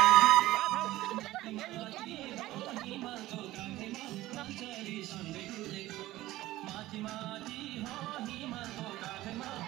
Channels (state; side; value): quieter; left; 16.6 dB